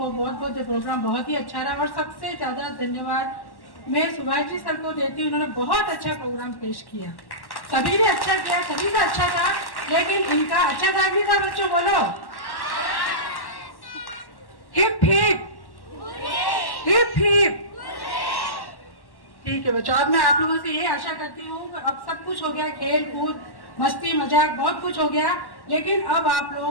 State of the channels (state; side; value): late; right; 1.1 ms